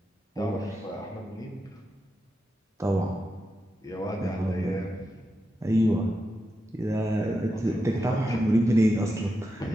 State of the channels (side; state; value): both; normal; correlation 0.88